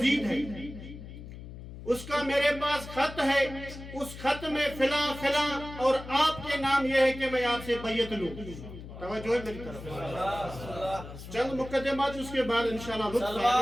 ہے، اس کا میرے پاس خط ہے، اس خط میں فلاں فلاں اور آپ کے نام یہ ہے کہ میں آپ سے بیعت لوں۔ توجہ ہے میری طرف، چند مقدمات اس کے بعد انشاءاللہ لطف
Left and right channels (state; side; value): noise; left; hum, 13 dB below the sound